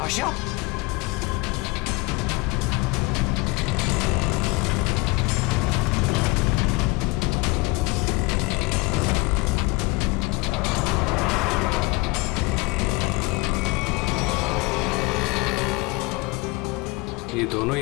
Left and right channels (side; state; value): right; quieter; 24.4 dB